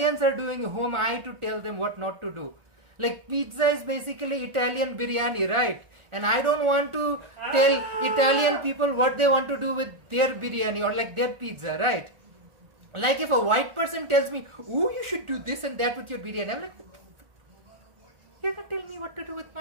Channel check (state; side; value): late; left; 1.4 ms